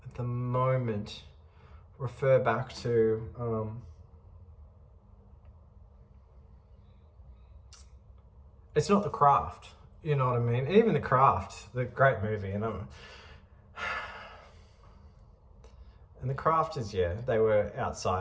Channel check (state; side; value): identical; both; correlation 1.00